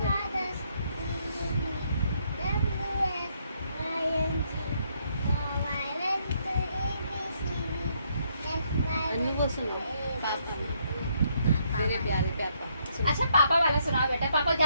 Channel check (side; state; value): both; inverted; correlation -0.72